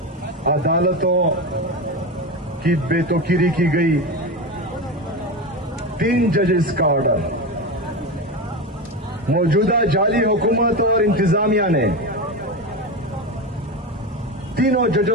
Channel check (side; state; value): both; normal; correlation 0.20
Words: عدالتوں کی بے توقیری کی گئی 3 ججز کا آرڈر موجودہ جعلی حکومت اور انتظامیہ نے تینوں